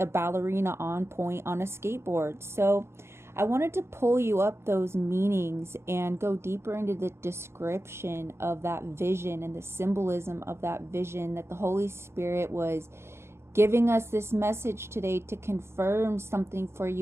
ballerina on point on a skateboard. So I wanted to pull you up those meanings and go deeper into the description of that vision and the symbolism of that vision, that the Holy Spirit was giving us this message today to confirm something for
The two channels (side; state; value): left; late; 0.12 ms